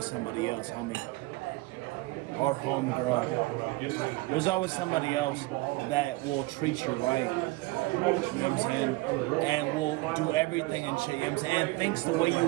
somebody else, homie. Or homegirl. There's always somebody else that will treat you right. You know what I'm saying? And will do everything and shit, you know what I'm saying? And thinks the way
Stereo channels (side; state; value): left; quieter; 21.6 dB